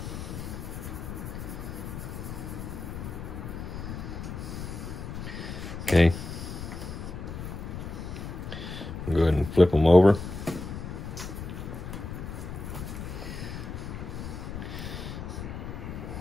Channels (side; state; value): left; noise; rumble, 7 dB below the sound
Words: Okay. Go ahead and flip them over.